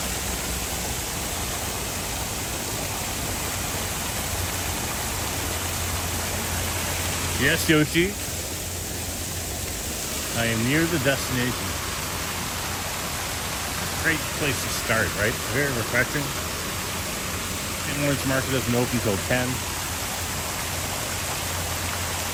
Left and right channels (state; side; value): identical; both; correlation 1.00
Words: Yes, Yoshi. I am near the destination. Great place to start, right? Very refreshing. St. Lawrence Market doesn't open until 10.